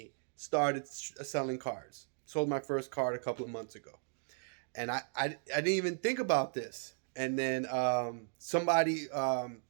started selling cards. Sold my first card a couple of months ago. And I didn't even think about this. And then somebody,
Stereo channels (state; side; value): silent; left; 54 dB below the other